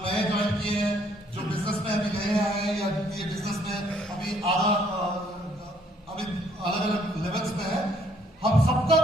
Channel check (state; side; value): normal; both; correlation 0.65